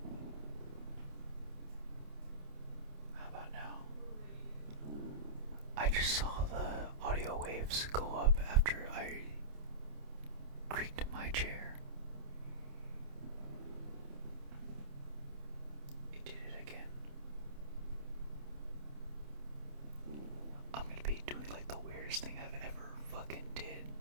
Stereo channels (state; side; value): late; left; 28 ms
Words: How about now? I just saw the audio waves go up after I creaked my chair. It did it again. I'm gonna be doing like the weirdest thing I've ever fucking did.